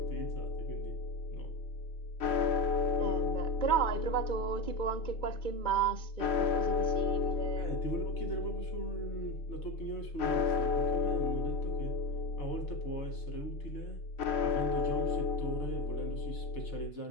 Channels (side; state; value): right; late; 3.0 ms